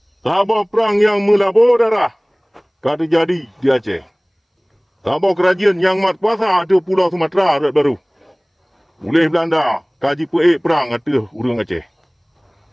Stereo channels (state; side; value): identical; both; correlation 1.00